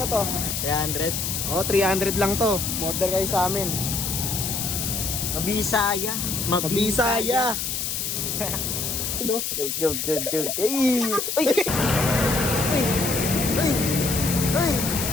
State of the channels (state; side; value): noise; left; hiss, 2 dB below the sound